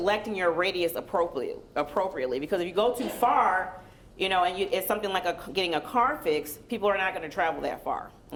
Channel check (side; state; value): both; identical; correlation 1.00